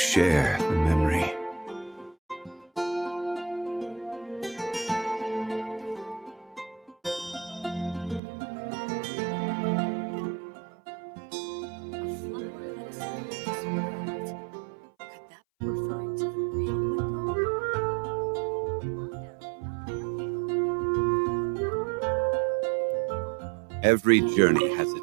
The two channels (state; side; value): drops out; left; at 8.2 s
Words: the memory? Every journey has